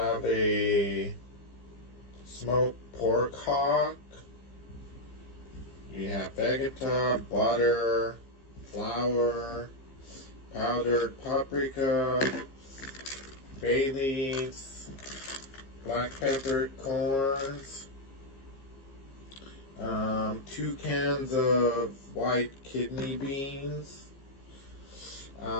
a smoked pork hock. We have vegeta, butter, flour, powdered paprika, bay leaves, black peppered corns, 2 cans of white kidney beans,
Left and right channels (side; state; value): right; late; 15 ms